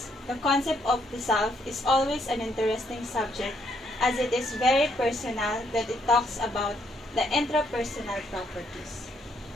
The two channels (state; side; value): normal; both; correlation 0.72